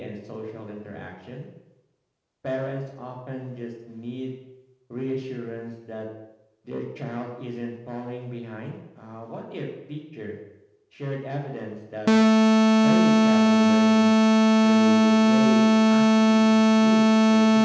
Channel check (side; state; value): both; identical; correlation 1.00